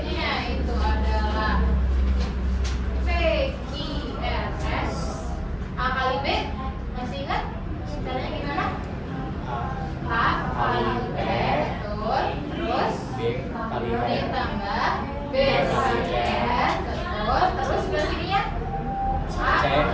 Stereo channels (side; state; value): both; identical; correlation 1.00